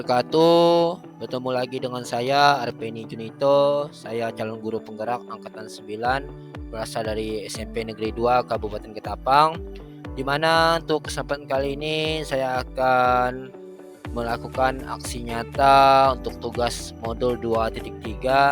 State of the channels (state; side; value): identical; both; correlation 1.00